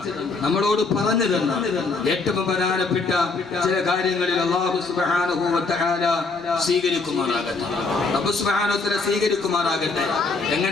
നമ്മളോട് പറഞ്ഞു തന്ന ഏറ്റവും പ്രധാനപ്പെട്ട ചില കാര്യങ്ങളിൽ അല്ലാഹു സുബ്ഹാനഹു വ തആല സ്വീകരിക്കുമാറാകട്ടെ.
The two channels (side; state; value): right; quieter; 3.9 dB